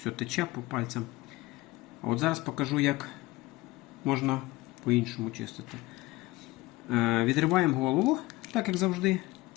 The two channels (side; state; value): right; quieter; 19.9 dB